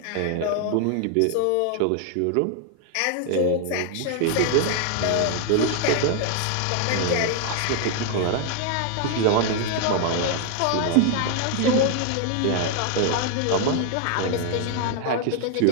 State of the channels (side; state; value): both; different; correlation 0.00